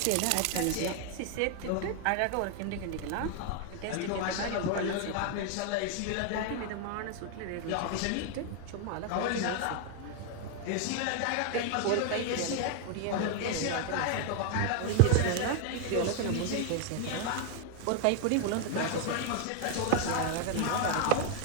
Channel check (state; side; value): different; both; correlation 0.00